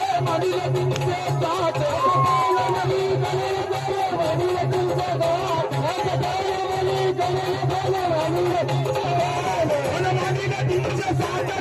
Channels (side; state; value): both; identical; correlation 1.00